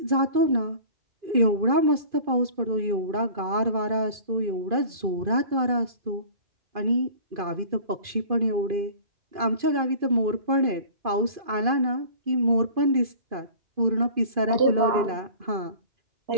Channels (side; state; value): left; late; 2.5 ms